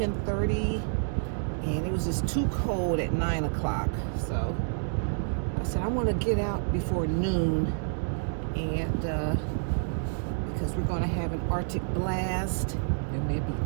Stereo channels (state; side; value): silent; left; digital silence